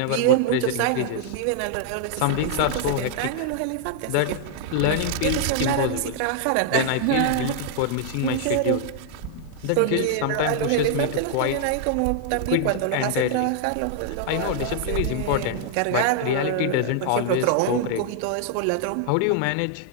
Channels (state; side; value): different; both; correlation 0.00